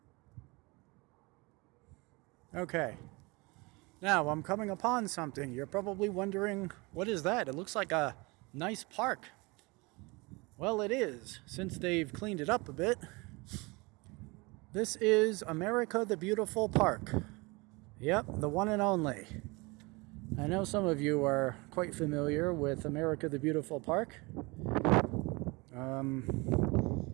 Okay, now I'm coming upon something. You're probably wondering, what is that? It looks like a nice park. Well, it is, since they've cleaned it up a bit. This is America the Beautiful Park. Yep, the one and only. I know some of you are quite familiar with America the Beautiful Park.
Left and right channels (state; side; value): quieter; left; 25.8 dB